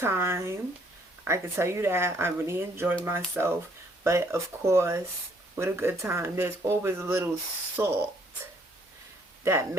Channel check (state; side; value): normal; both; correlation 0.65